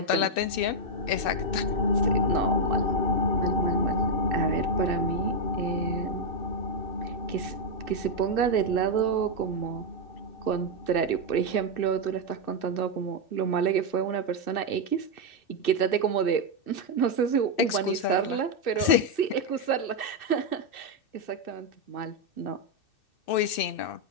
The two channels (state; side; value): late; right; 2.6 ms